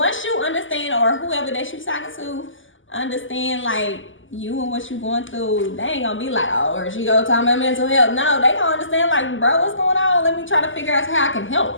you understand, or whoever that you talking to, understand, like, you and what you going through, they ain't gonna be like, oh, or she go talk about mental health. No, they gonna understand, like, bro, what's going on? Let me try to figure out how I can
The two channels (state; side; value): late; right; 0.57 ms